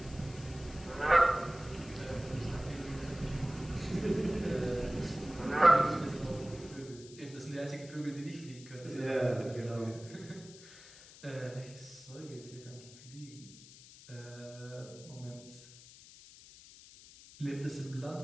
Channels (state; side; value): noise; left; hiss, 19 dB below the sound